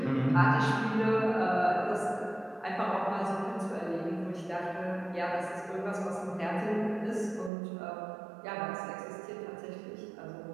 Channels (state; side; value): drops out; left; at 7.5 s